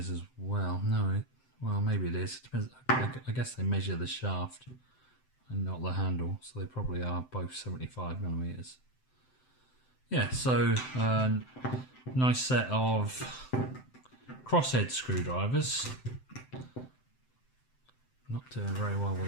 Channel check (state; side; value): late; right; 7.8 ms